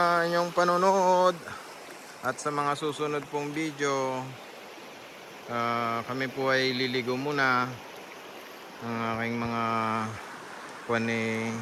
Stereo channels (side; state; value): both; identical; correlation 1.00